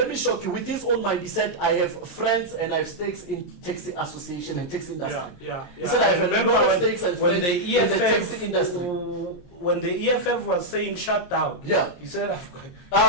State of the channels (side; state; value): right; late; 23 ms